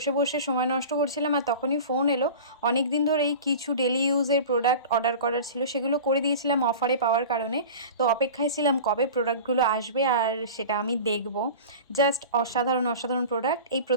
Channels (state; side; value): inverted; both; correlation -0.35